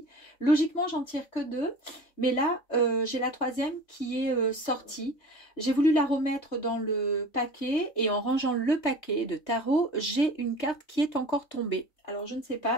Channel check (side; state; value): right; late; 3.3 ms